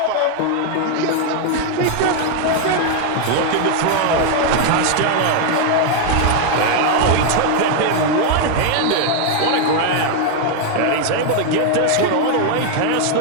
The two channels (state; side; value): different; both; correlation 0.00